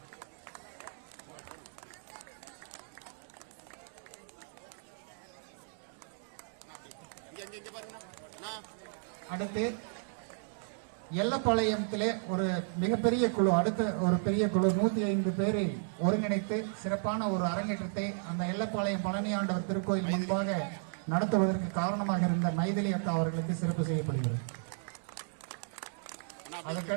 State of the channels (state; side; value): silent; left; digital silence